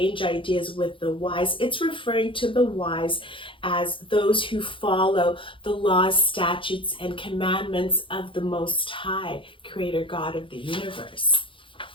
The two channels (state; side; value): late; right; 0.25 ms